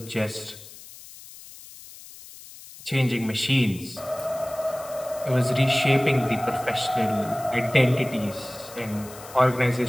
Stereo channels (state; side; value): noise; left; hiss, 17 dB below the sound